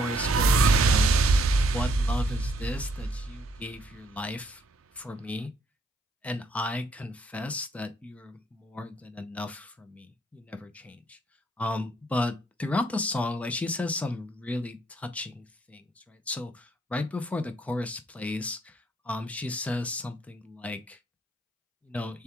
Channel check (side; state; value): both; normal; correlation 0.69